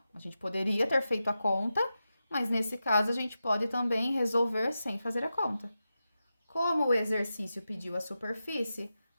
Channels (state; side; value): inverted; both; correlation -0.91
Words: a gente poderia ter feito a conta, mas nesse caso a gente pode também resolver sem fazer a conta. Como o exercício pediu a superfície,